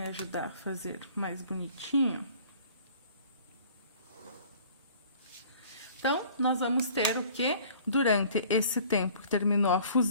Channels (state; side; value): inverted; both; correlation -0.51